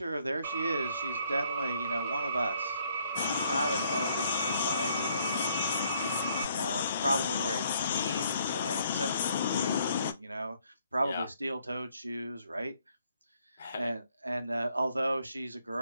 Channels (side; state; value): both; inverted; correlation -0.68